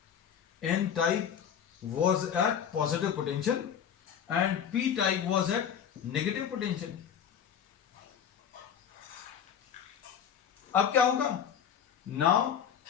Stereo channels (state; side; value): quieter; right; 8.4 dB